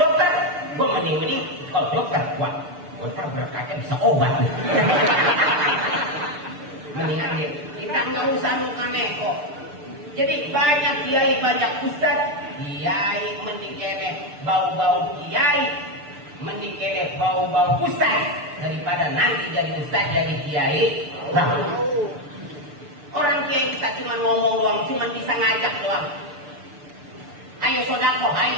Gue mending dokter. Wah, dokter berkatnya bisa obat. Mendingan kita nggak usah lupa neko. Jadi banyak kiai, banyak ustaz. Kiai mending kene bau-bau kiai, mending kene bau-bau ustaz daripada nanti jadi ustaz jadi kiai. Nah, orang kiai bisa cuma ngomong doang, cuma bisa ngajak doang. Ayo sodako,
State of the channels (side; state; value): left; late; 6.8 ms